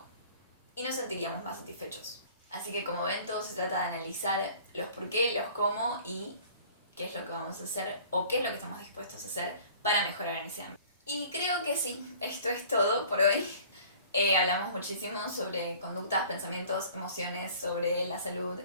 y nos sentiríamos más satisfechos. Así que como ven, todo se trata de analizar los por qué, los cómo y qué es lo que vamos a hacer o qué es lo que estamos dispuestos a hacer para mejorar en ese ámbito. Y creo que sí, esto es todo por hoy. Hablamos muchísimo sobre conductas, pensamientos, emociones, sobre la salud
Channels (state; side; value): inverted; both; correlation -0.49